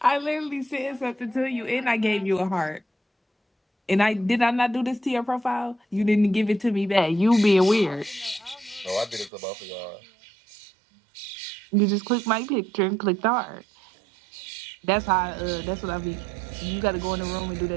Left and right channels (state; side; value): drops out; left; at 9.3 s